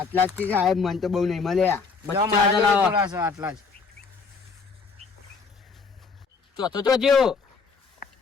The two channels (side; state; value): right; quieter; 4.9 dB